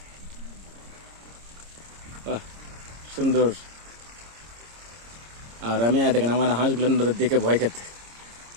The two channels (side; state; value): left; late; 26 ms